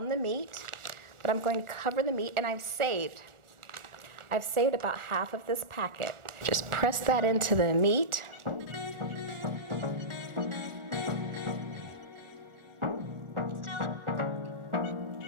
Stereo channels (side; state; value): left; late; 1.4 ms